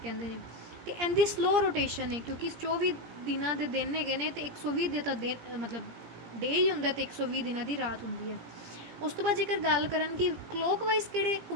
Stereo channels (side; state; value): left; late; 17 ms